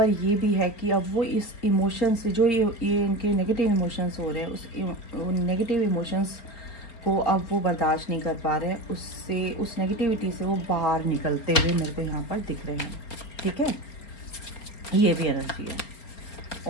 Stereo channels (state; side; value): late; right; 4.4 ms